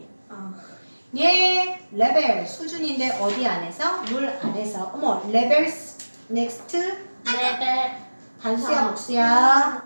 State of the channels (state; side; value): inverted; both; correlation -1.00